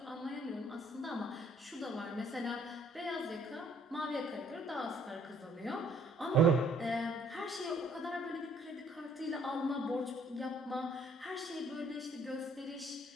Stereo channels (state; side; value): normal; both; correlation 0.62